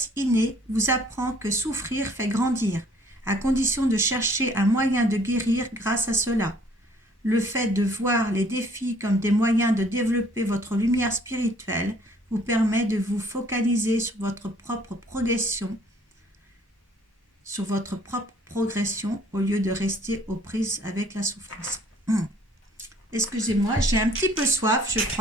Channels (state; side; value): normal; both; correlation 0.58